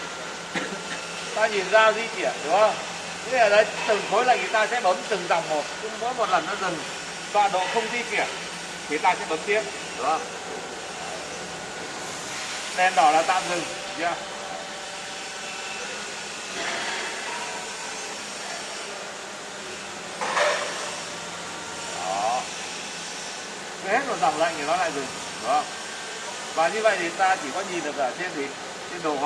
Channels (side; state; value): both; identical; correlation 1.00